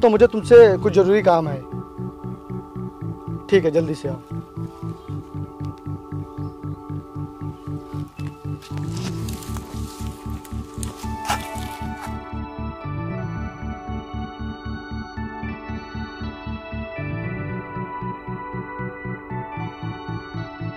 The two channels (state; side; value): identical; both; correlation 1.00